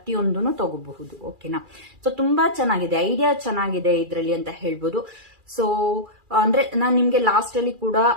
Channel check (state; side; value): late; left; 2.4 ms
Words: ತಗೋಬಹುದು. ಓಕೆನಾ, ಸೊ ತುಂಬಾ ಚೆನ್ನಾಗಿದೆ, ಐಡಿಯಾ ಚೆನ್ನಾಗಿದೆ ಇದರಲ್ಲಿ ಅಂತ ಹೇಳ್ಬೋದು. ಸೊ ಅಂದ್ರೆ ನಾನು ನಿಮ್ಗೆ ಲಾಸ್ಟ್ ಅಲ್ಲಿ ಕೂಡ